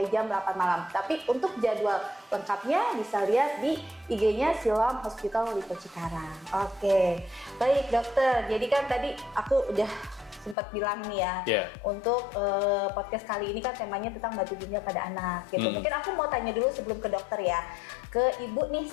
jam 8 malam. Tapi untuk jadwal lengkapnya bisa lihat di IG-nya Siloam Hospital Lipo Cikarang. Oke, baik dokter. Jadi kan tadi aku udah sempat bilang nih ya, untuk podcast kali ini kan temanya tentang batu ginjal pada anak gitu. Mungkin aku mau tanya dulu sebelum ke dokter ya, ke ibu nih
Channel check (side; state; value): right; drops out; at 10.6 s